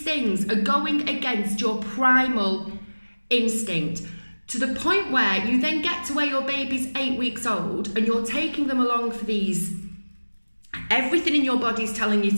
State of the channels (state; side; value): inverted; both; correlation -1.00